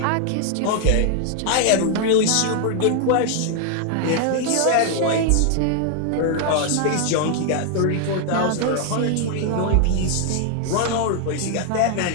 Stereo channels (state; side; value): different; both; correlation 0.00